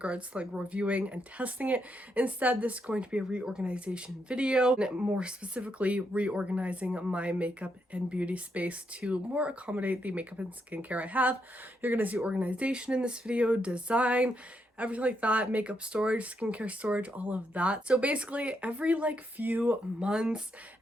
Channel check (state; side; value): normal; both; correlation 0.79